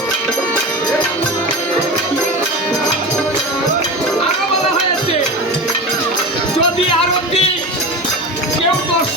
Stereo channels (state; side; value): normal; both; correlation 0.27